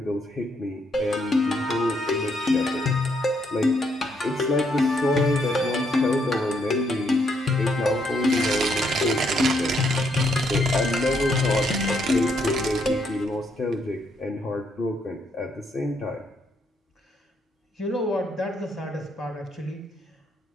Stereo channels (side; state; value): both; normal; correlation 0.74